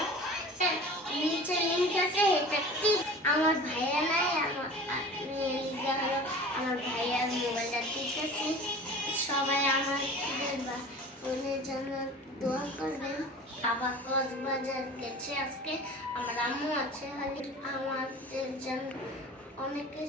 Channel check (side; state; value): both; normal; correlation 0.40